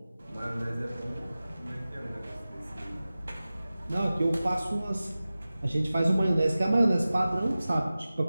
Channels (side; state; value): both; inverted; correlation -0.96